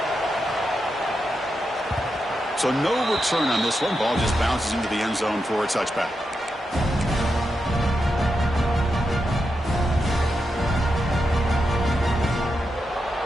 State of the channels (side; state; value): both; normal; correlation 0.87